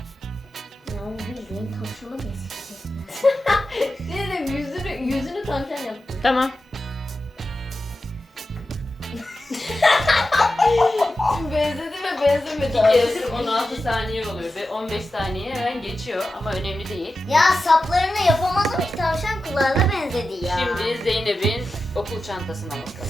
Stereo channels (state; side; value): normal; both; correlation 0.92